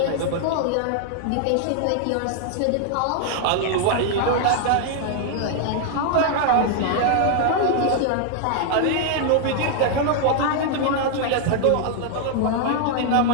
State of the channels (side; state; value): both; different; correlation 0.00